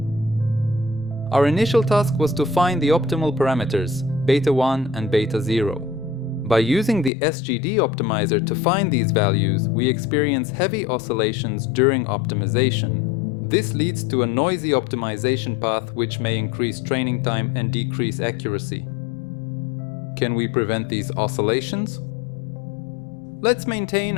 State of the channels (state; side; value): drops out; right; at 7.1 s